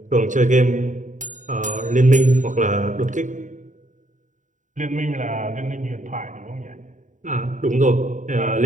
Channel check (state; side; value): late; left; 0.36 ms